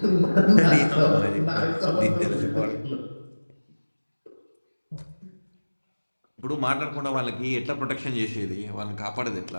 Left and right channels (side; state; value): both; inverted; correlation -1.00